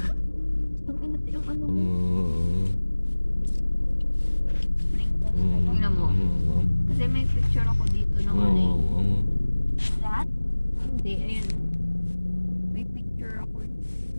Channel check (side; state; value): both; inverted; correlation -1.00